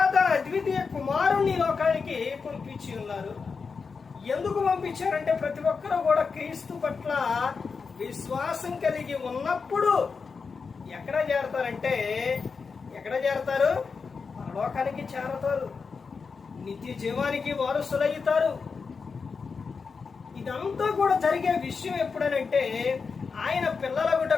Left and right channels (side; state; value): right; quieter; 5.1 dB